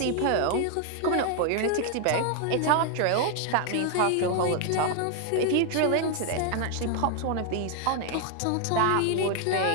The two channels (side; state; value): both; different; correlation 0.00